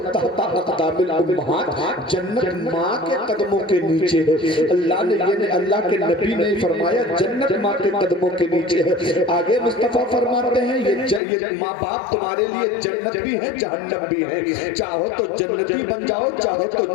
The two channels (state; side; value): drops out; right; at 11.2 s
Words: تحت اقدام الامہات، جنت ماں کے قدموں کے نیچے ہے۔ اللہ کے نبی نے فرمایا جنت ماں کے قدموں کے نیچے ہے۔ آگے مصطفیٰ فرماتے ہیں یہ ماں باپ تمہارے لیے جنت بھی ہے جہنم بھی ہے، چاہو تو جنتی بن جاؤ چاہو تو